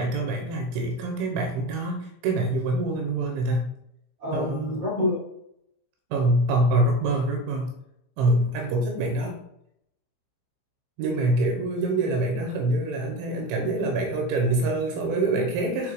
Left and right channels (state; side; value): late; left; 15 ms